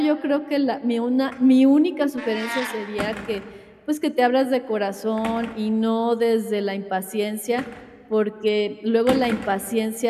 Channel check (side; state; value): both; identical; correlation 1.00